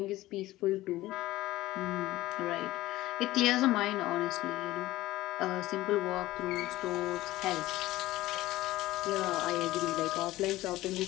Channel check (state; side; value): quieter; right; 17.0 dB